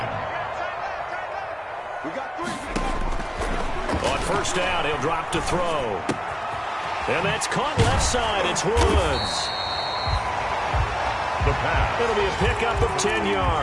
On 1st down, he'll drop to throw. And that's caught left side. It's Woods. The pass. It'll be a pickup of 10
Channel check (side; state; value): both; identical; correlation 1.00